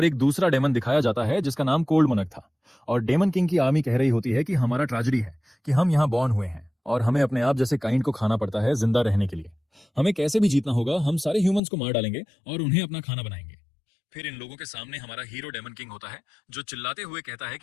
एक दूसरा डेमन दिखाया जाता है जिसका नाम कोल्ड मनक था। और डेमन किंग की आर्मी कह रही होती है कि हमारा ट्रेजेडी है कि हम यहाँ बॉर्न हुए हैं और हमें अपने आप जैसे काइंड को खाना पड़ता है जिंदा रहने के लिए। हमें कैसे भी जीतना होगा, हम सारे ह्यूमंस को मार डालेंगे और उन्हें अपना खाना बनाएंगे। फिर इन लोगों के सामने हमारा हीरो डेमन किंग होता है, जो चिल्लाते हुए कहता है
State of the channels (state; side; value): drops out; right; at 11.6 s